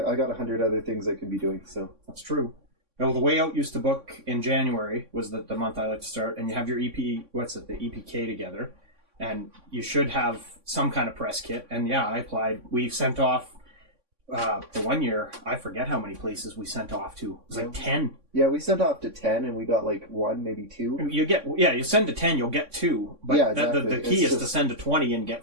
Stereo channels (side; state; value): left; late; 3.6 ms